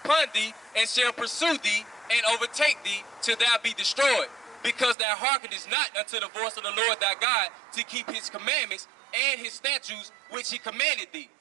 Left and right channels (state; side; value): drops out; left; at 5.0 s